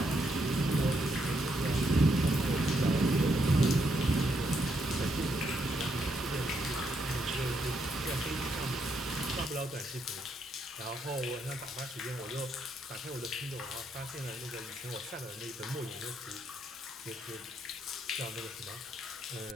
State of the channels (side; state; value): both; normal; correlation 0.77